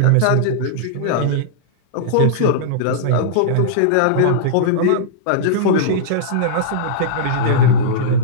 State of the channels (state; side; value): different; both; correlation -0.03